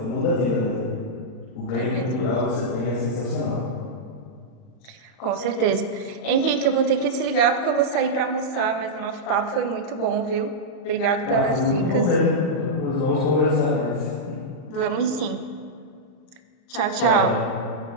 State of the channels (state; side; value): late; right; 38 ms